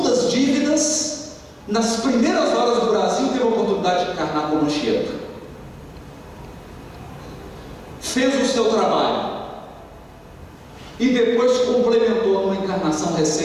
dívidas, nas primeiras horas do Brasil teve a oportunidade de encarnar como Anchieta. Fez o seu trabalho e depois complementou numa encarnação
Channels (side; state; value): both; identical; correlation 1.00